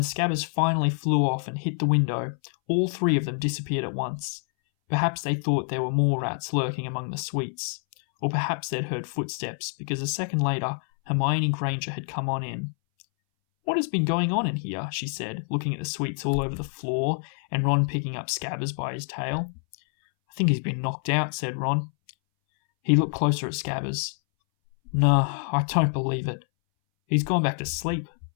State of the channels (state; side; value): silent; right; 61 dB below the other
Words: Scabbers finally flew off and hit the window, all 3 of them disappeared at once. Perhaps they thought there were more rats lurking among the sweets, or perhaps they'd heard footsteps, because a second later Hermione Granger had come on in. What has been going on in here? She said, looking at the sweets all over the floor, and Ron picking up Scabbers by his tail. I think he's been knocked out, said Ron. He looked closer at Scabbers. No, I don't believe it. He's gone back to sleep.